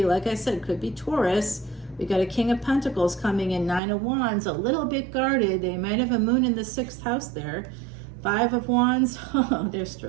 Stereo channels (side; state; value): left; drops out; at 3.8 s